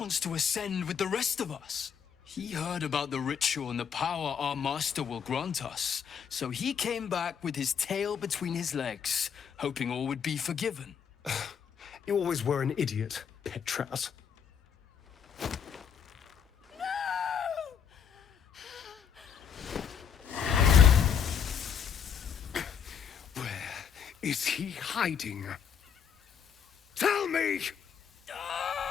to ascend with the rest of us. He heard about the ritual and the power our master will grant us. So he came back with his tail between his legs, hoping all would be forgiven. You always were an idiot, Petras. Where is he hiding? Tell me!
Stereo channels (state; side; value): quieter; right; 7.6 dB